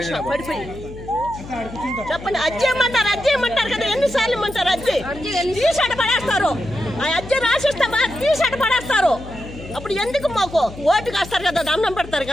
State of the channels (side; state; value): left; noise; hum, 14 dB below the sound